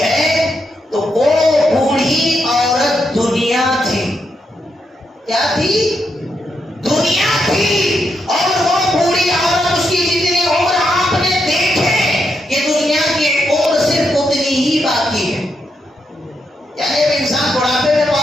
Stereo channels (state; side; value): normal; both; correlation 0.81